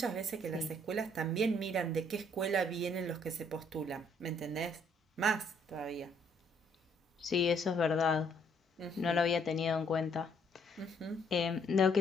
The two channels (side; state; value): both; normal; correlation 0.67